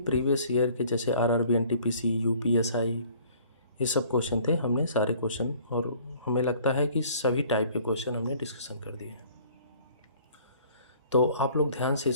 प्रीवियस ईयर के जैसे RRB NTPC UPSI ये सब क्वेश्चन थे, हमने सारे क्वेश्चन और हमें लगता है कि सभी टाइप के क्वेश्चन हमने डिस्कशन कर दिए हैं। तो आप लोग ध्यान से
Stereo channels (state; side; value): inverted; both; correlation -0.54